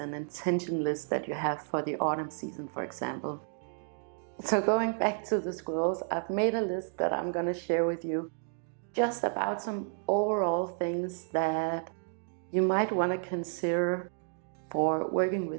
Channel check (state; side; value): silent; left; digital silence